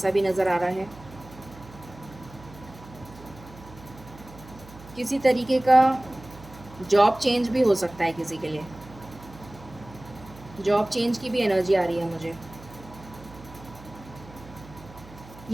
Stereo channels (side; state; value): right; noise; hum, 19 dB below the sound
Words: भी नज़र आ रहा है। किसी तरीके का जॉब चेंज भी हो सकता है किसी के लिए। जॉब चेंज की भी एनर्जी आ रही है मुझे।